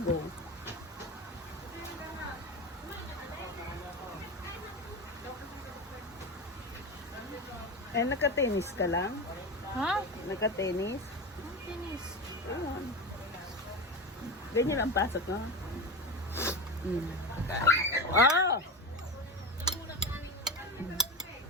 Eh, naka-tennis ka lang? Ha? Naka-tennis? Tennis. Ayan. Ganyan lang pasok, no? Ah!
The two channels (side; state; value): both; normal; correlation 0.23